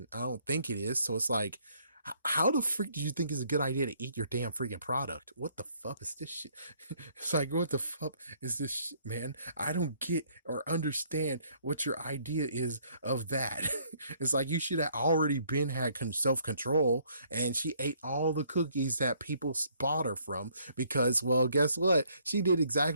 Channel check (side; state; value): both; inverted; correlation -0.65